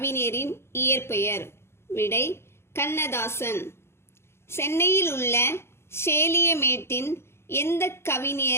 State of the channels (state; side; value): late; right; 0.12 ms